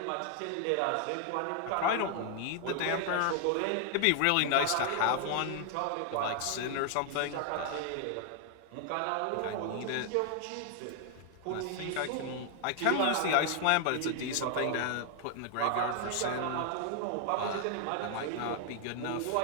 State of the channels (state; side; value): different; both; correlation 0.00